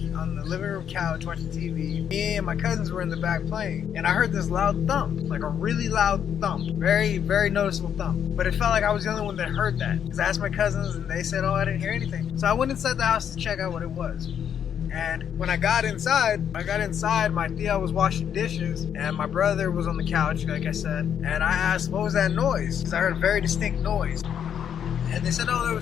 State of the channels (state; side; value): quieter; right; 8.6 dB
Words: the living room couch watching TV. Me and my cousins were in the back playing. And I heard this loud thump, like a really loud thump. Very, very noticeable thump. But it felt like I was the only one that heard that. Because I asked my cousins, and they said, oh, I didn't hear anything. So I went inside the house to check out what it was. And when I got inside, my tia was washing dishes, and my brother was on the couch, like I said. And I asked, what was that noise? Because I heard a very distinct noise. And they said, oh, there